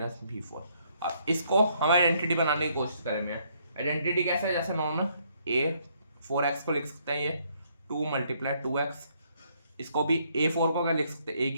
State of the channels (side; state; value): both; inverted; correlation -0.69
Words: b4। अब इसको हम आइडेंटिटी बनाने की कोशिश करेंगे। आइडेंटिटी कैसे है, जैसे नॉर्मल a4x को लिख सकते हैं ये 2 × 2x, इसको भी a4 को क्या लिख सकते हैं, a